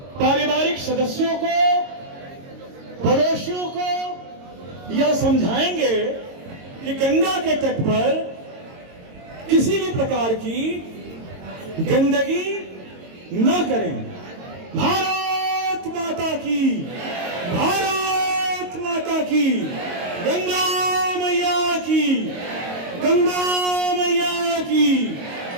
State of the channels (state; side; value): late; left; 22 ms